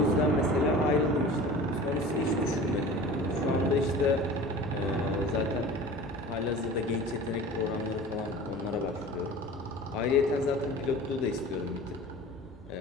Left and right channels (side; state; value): both; normal; correlation 0.39